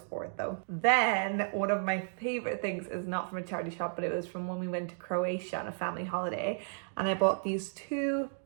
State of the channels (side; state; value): left; silent; digital silence